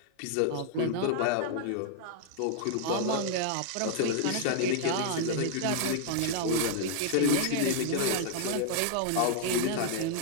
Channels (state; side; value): different; both; correlation 0.00